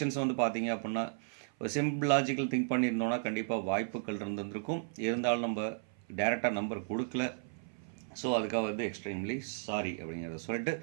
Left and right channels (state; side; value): silent; left; 55 dB below the other